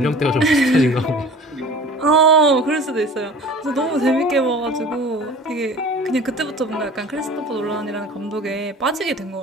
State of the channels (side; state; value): both; normal; correlation 0.42